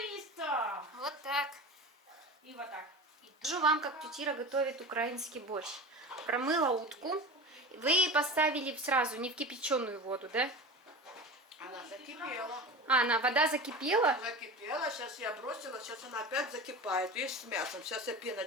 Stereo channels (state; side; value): normal; both; correlation 0.31